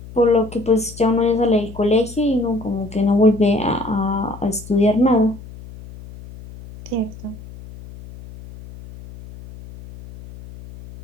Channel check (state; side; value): noise; left; hum, 16 dB below the sound